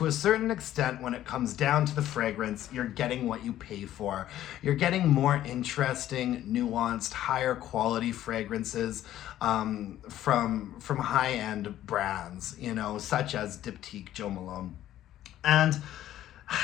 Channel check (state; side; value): quieter; right; 12.8 dB